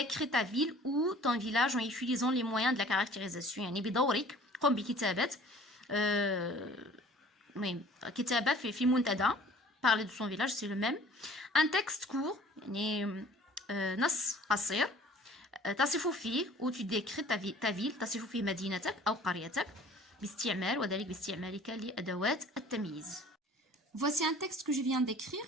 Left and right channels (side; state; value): both; normal; correlation 0.50